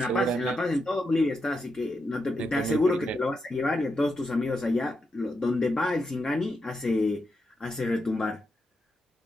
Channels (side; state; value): both; normal; correlation 0.84